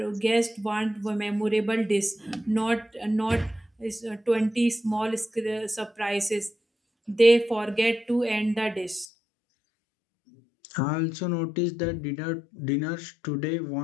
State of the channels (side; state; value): right; drops out; at 9.1 s